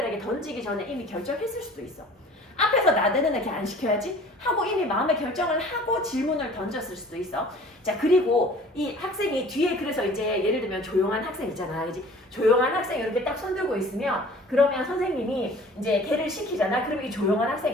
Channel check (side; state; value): both; normal; correlation 0.48